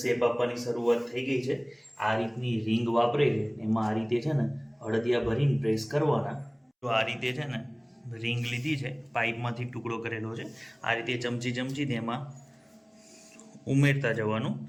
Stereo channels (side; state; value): both; identical; correlation 1.00